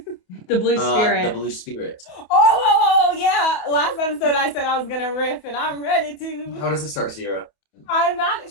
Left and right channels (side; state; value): right; late; 28 ms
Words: The Blue Spirit. The Blue Spirit. Oh, yeah. Last episode I said I was going to riff, and I'm ready to. How does it start, Sierra? I'm not